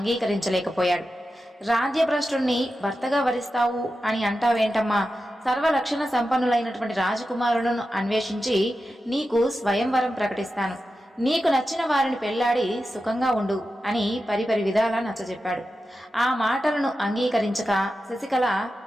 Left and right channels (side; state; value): both; normal; correlation 0.91